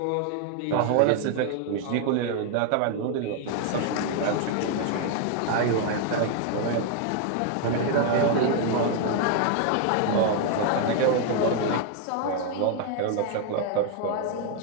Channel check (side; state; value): both; different; correlation 0.00